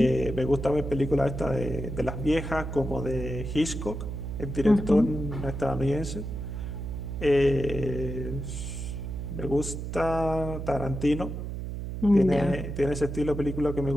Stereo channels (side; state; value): right; noise; hum, 6 dB below the sound